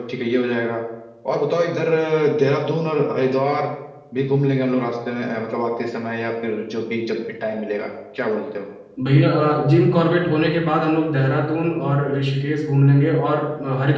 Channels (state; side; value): identical; both; correlation 1.00